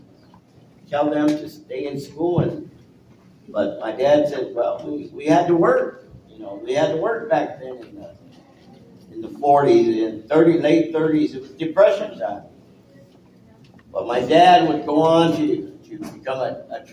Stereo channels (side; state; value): both; identical; correlation 1.00